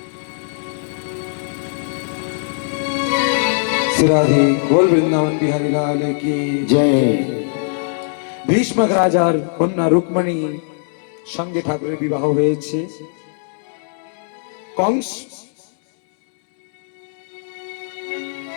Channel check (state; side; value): silent; right; digital silence